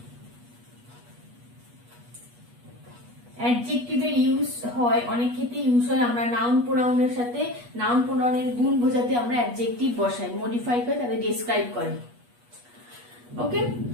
অ্যাডজেক্টিভের ইউজ হয়, অনেক ক্ষেত্রে ইউজ হয়। আমরা নাউন প্রোনাউনের সাথে নাউন প্রোনাউনের গুণ বোঝাতে আমরা অ্যাডজেক্টিভ বসাই, মডিফাই করে তাদের ডেসক্রাইব করে। ওকে,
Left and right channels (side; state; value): left; late; 8.3 ms